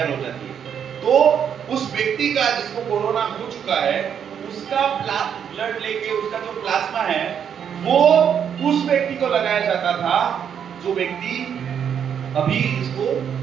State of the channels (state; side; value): quieter; left; 8.2 dB